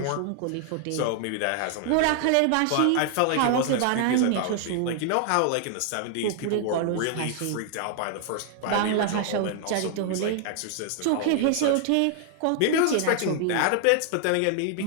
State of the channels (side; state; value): both; different; correlation 0.00